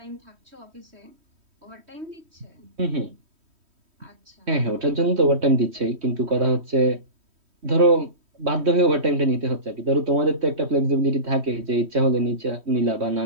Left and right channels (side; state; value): left; late; 3.1 ms